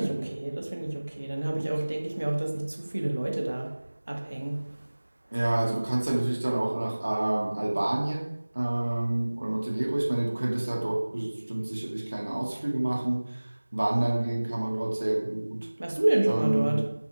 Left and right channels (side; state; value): both; inverted; correlation -1.00